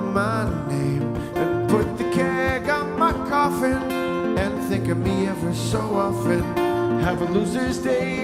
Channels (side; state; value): both; identical; correlation 1.00